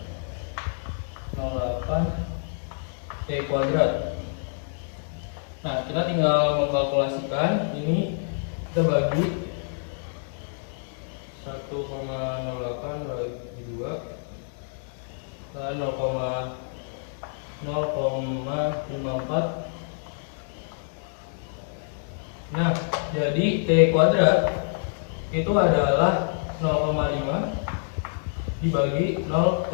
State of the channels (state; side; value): silent; right; digital silence